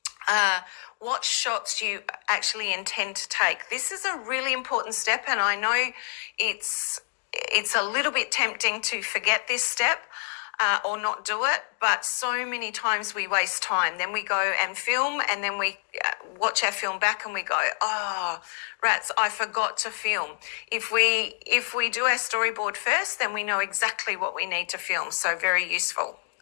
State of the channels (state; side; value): silent; right; 60 dB below the other